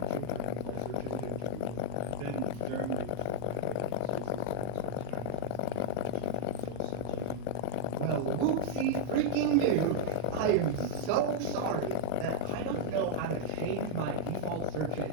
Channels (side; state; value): both; different; correlation -0.01